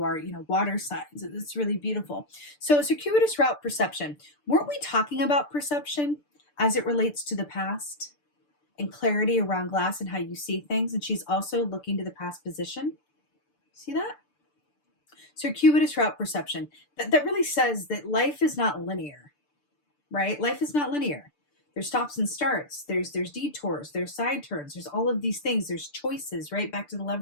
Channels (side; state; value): right; late; 6.8 ms